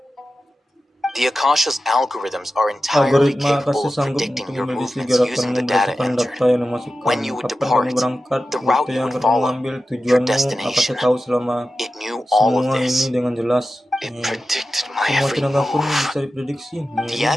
The Akasha's algorithms are entirely Algoritma capable Akasha of sanggup predicting untuk your memiliki movements using gerakanmu the data berdasarkan entered. data yang dimasukkan. When you would Kapan kamu depart, berangkat, the rute route you yang would akan kamu follow, ambil, your tujuanmu, destination. Akasha tahu selama It knew all of semua this. ini dengan jelas. It predicted my Semua every tindakanku move. bisa diprediksi. The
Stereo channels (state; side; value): normal; both; correlation 0.93